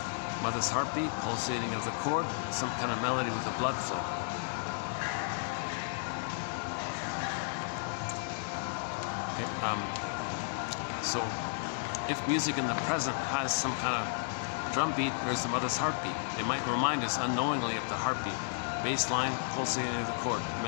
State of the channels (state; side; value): silent; right; digital silence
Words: mother's heartbeat, pulsating of the cord, some kind of melody with the blood flow. Okay, so if music in the present has some kind of drum beat, there's the mother's heartbeat. It might remind us unknowingly of the heartbeat. Bass line, pulsating of the cord.